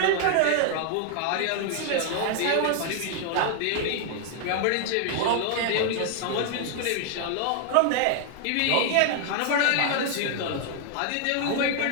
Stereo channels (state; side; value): different; both; correlation 0.00